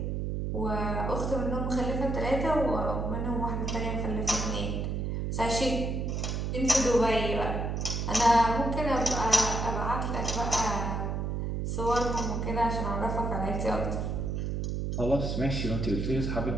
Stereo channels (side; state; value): right; noise; hum, 1 dB below the sound